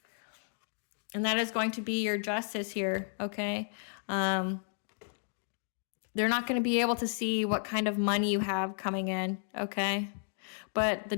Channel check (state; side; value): silent; right; digital silence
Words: And that is going to be your justice here, okay? They're not going to be able to see what kind of money you have coming in, okay? But the